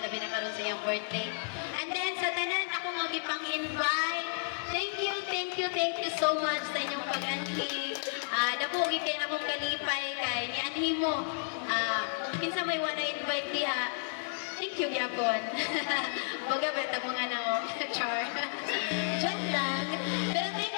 labi na karon sa iyang birthday. And then, sa tanan, ako nga gipang-invite. Thank you so much sa inyong pag-anhi. Nabugi kayo na kong kalipay kay ni anhi mo. Kinsa may wanna invite diha. Thank you, Gyapon. Baga, beta mo nga na mo. Char. Joke lang. Pero thank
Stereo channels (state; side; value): silent; right; digital silence